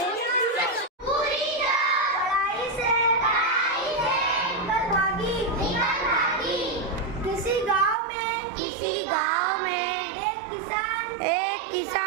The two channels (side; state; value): left; drops out; at 8.0 s